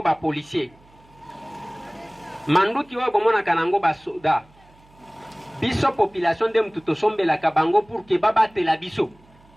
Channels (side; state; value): right; noise; hum, 29 dB below the sound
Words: ba policier. Mandouki Oyo Bomona Kanango ba soda. Biso population de Mtutosombe la Kabango pour que babate la biso.